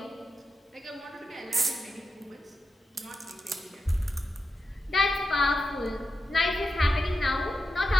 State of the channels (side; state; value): both; normal; correlation 0.88